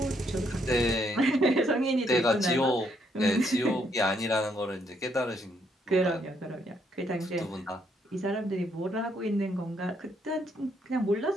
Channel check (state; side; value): normal; both; correlation 0.72